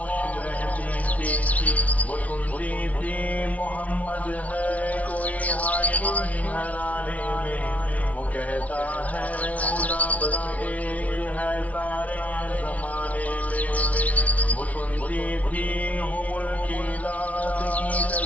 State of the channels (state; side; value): late; right; 0.069 ms